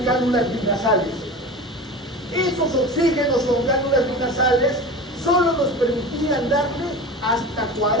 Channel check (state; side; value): normal; both; correlation 0.32